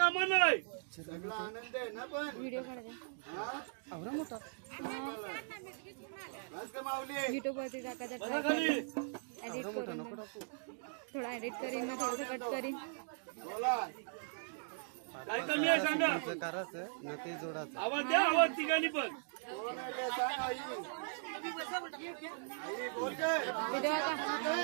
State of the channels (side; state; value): left; silent; digital silence